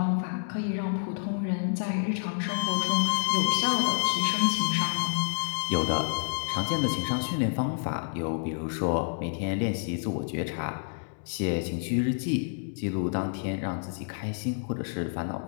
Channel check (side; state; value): right; silent; digital silence